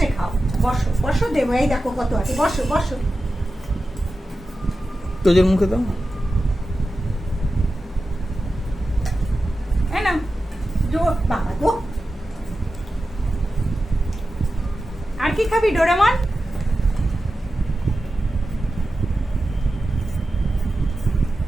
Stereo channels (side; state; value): both; normal; correlation 0.93